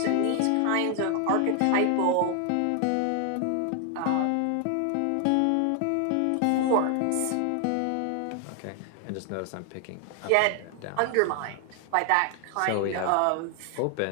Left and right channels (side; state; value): both; different; correlation 0.00